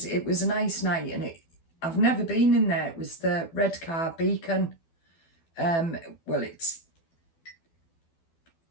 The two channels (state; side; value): late; right; 12 ms